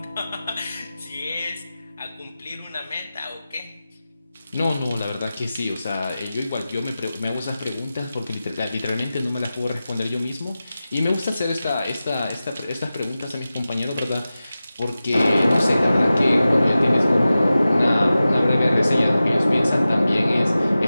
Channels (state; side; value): inverted; both; correlation -0.95